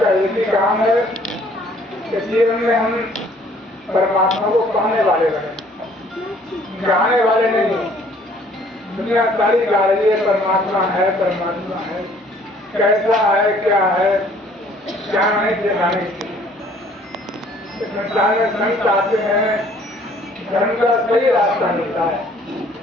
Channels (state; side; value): normal; both; correlation 0.58